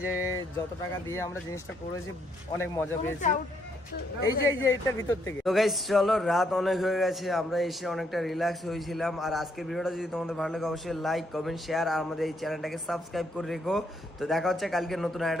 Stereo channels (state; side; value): normal; both; correlation 0.73